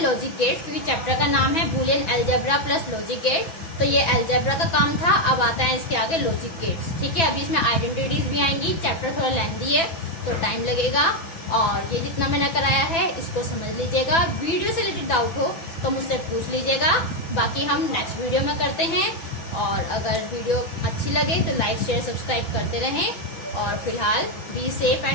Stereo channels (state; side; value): late; right; 6.0 ms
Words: लॉजिक गेट्स, क्योंकि चैप्टर का नाम है boolean algebra plus logic gate. तो ये अलजेब्रा का काम था, अब आता है इसके आगे लॉजिक गेट्स। ठीक है, अभी इसमें आइडेंटिटीज भी आएंगी। चैप्टर थोड़ा लेंथी है तो टाइम लगेगा, और ये जितना मैंने कराया है इसको समझ लीजिएगा। वीडियो से रिलेटेड डाउट हो तो मुझसे पूछ लीजिएगा, बाकी हम नेक्स्ट वीडियो में करते हैं। और अगर वीडियो अच्छी लगे तो लाइक शेयर सब्सक्राइब करते रहें, और फिलहाल be safe